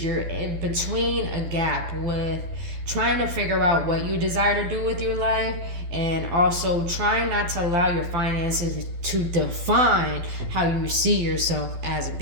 you're in between a gap with trying to figure out what you desire to do with your life and also trying not to allow your finances to define how you see yourself as a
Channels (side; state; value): left; late; 12 ms